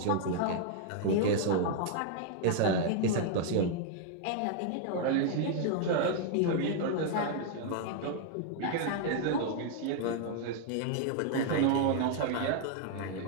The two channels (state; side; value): different; both; correlation 0.00